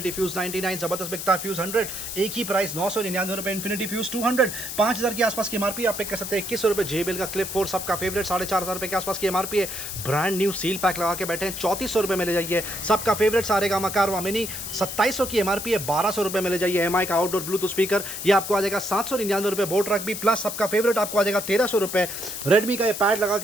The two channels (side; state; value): left; noise; hiss, 7 dB below the sound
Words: फ्यूज 99 ज़बरदस्त बिकता है। फ्यूज 100 एक ही प्राइस 999 रुपये। इन्फिनिटी फ्यूज 200 5,000 के आसपास की एमआरपी, आप पिक कर सकते हैं 2100 रुपये। JBL का क्लिप 4 सबका फेवरेट 4,500 रुपये के आसपास की एमआरपी है। ब्रांड न्यू सील पैक लगा के बैठे हैं 3400 रुपये में ले जाइए। सबका फेवरेट सारेगामा कारवा मिनी 2700 की एमआरपी है, 1200 रुपये में ले जाइए। MI का आउटडोर ब्लूटूथ स्पीकर ये आपको आ जाएगा 799 रुपये। बोट ट्रक भी प्लस सबका फेवरेट आपको आ जाएगा 1300 रुपये। रेडमी का ये पैड लगा